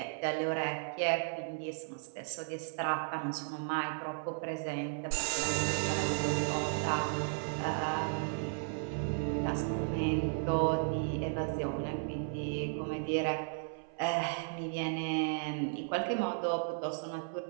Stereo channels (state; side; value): silent; left; 55 dB below the other